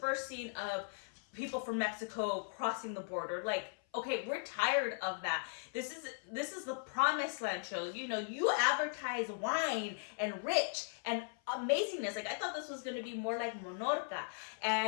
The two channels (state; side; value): silent; right; 52 dB below the other